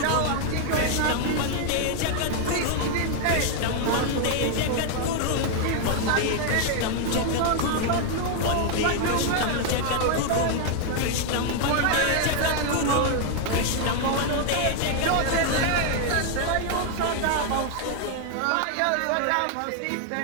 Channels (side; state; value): both; different; correlation 0.00